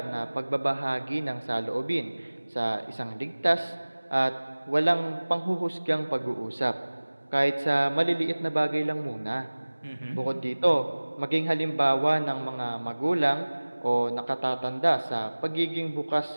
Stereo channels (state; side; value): inverted; both; correlation -1.00